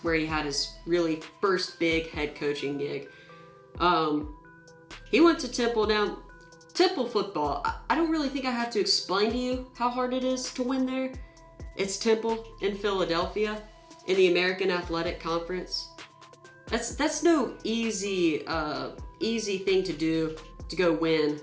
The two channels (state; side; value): identical; both; correlation 1.00